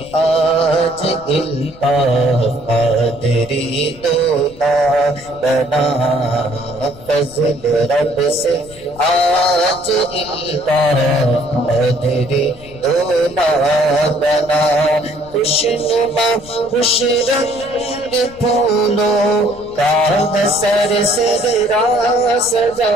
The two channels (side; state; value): left; noise; rumble, 21 dB below the sound